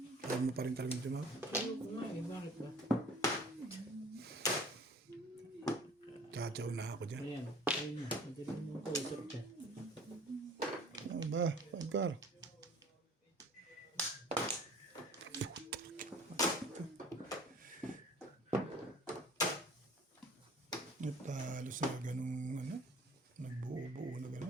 Ayaw mo pa rin talagang tumawag. Ayoko nga eh. Bakit ba? Tsatsaw na ako dyan. Ayan. Ayun na. Magaling mo ko usap dyan. Ano ba? Pagkar. Natalo sa ganung ano? Nagbuo-buo na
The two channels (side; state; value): both; normal; correlation 0.48